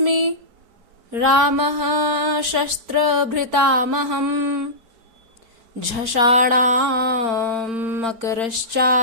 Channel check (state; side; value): late; left; 4.4 ms